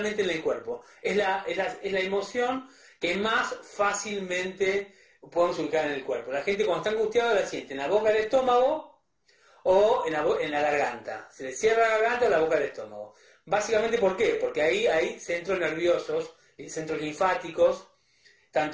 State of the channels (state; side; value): identical; both; correlation 1.00